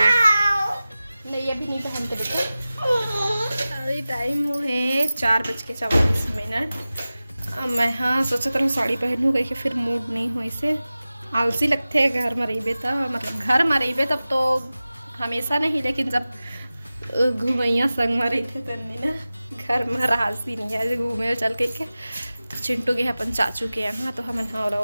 नहीं अभी नहीं पहनते बेटा। अभी टाइम हो है 4:44। मैं हाँ सोचा था साड़ी पहनूँ कहीं के फिर मूड नहीं हो इसे आलसी लगते है घर में रही तो, मतलब घर में रही तब तो हमेशा नहीं, लेकिन जब घूमैया संग में रही थे तब ना घर में रासी नहीं है घूमे चल के तो चिंटू के अपन चाचू के यहाँ तो हम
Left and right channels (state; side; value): inverted; both; correlation -0.96